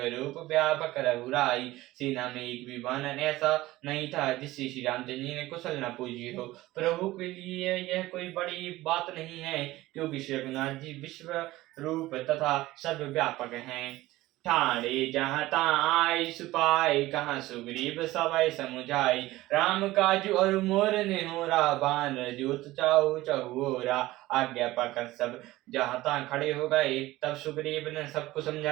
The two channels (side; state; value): left; quieter; 17.6 dB